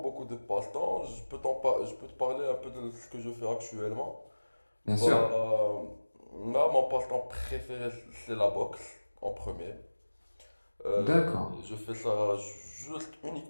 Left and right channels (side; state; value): both; inverted; correlation -1.00